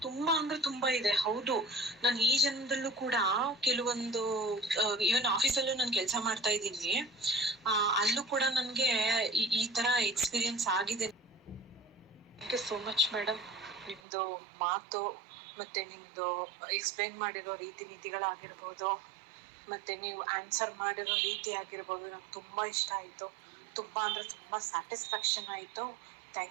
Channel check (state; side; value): drops out; left; at 14.0 s